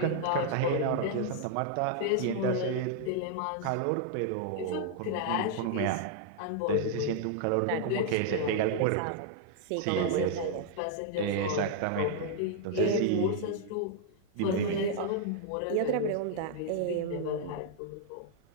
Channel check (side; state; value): both; different; correlation -0.01